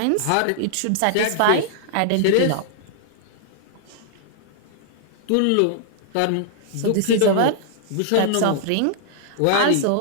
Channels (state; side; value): different; both; correlation -0.01